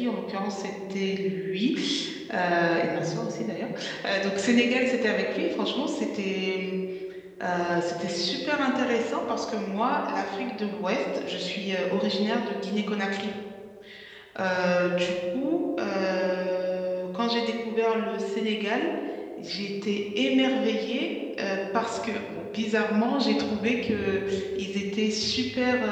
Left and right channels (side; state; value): both; identical; correlation 1.00